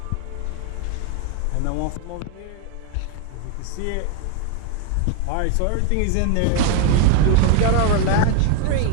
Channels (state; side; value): different; both; correlation 0.01